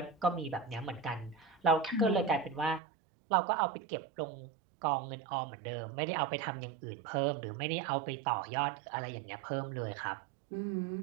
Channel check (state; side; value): drops out; left; at 2.8 s